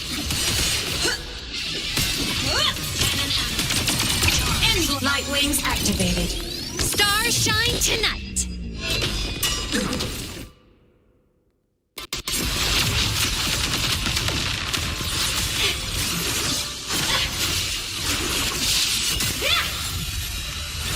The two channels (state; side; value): identical; both; correlation 1.00